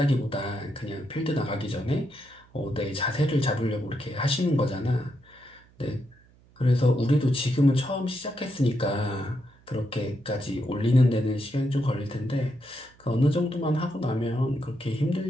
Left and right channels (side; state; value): right; noise; hum, 29 dB below the sound